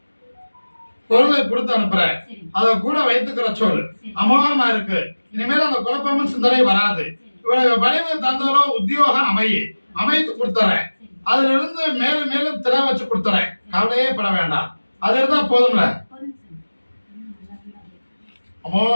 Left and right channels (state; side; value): inverted; both; correlation -1.00